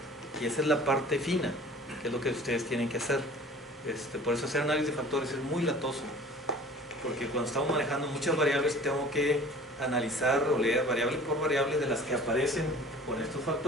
Y esa es la parte fina, que es lo que ustedes tienen que hacer. Por eso hacer análisis de factores es muy latoso, porque cuando estamos manejando muchas variables tengo que analizar o leer variable por variable de las que aparecen con estos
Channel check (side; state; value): both; normal; correlation 0.46